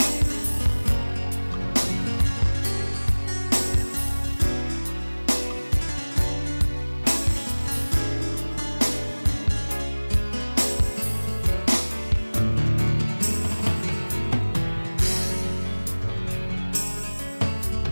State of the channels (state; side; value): inverted; both; correlation -1.00